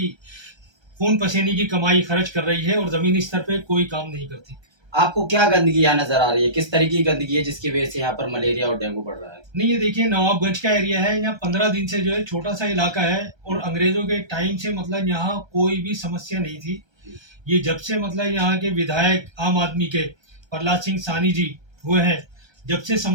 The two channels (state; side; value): late; left; 1.3 ms